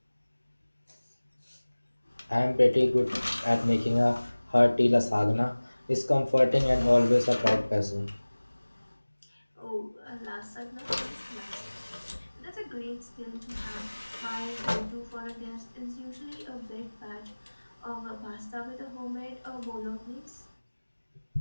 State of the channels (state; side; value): inverted; both; correlation -1.00